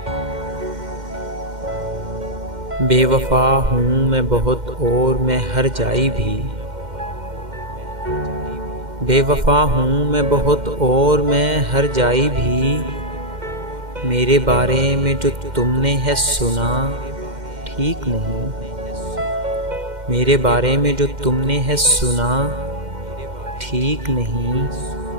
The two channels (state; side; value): late; left; 2.1 ms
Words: बेवफा हूँ मैं बहुत और मैं हर जाई भी, बेवफा हूँ मैं बहुत और मैं हर जाई भी। मेरे बारे में जो तुमने है सुना ठीक नहीं। मेरे बारे में जो तुमने है सुना ठीक नहीं।